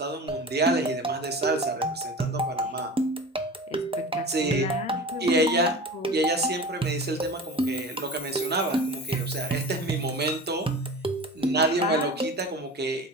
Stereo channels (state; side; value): normal; both; correlation 0.34